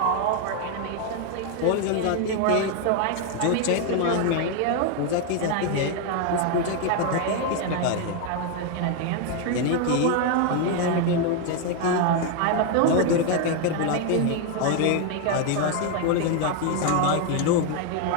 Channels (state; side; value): different; both; correlation 0.01